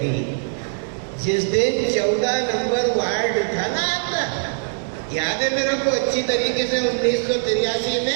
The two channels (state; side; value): silent; left; digital silence